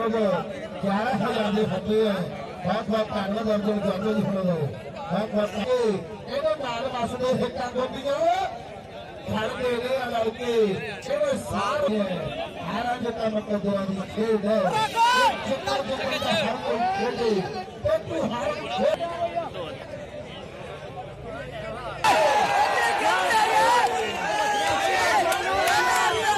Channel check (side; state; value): both; identical; correlation 1.00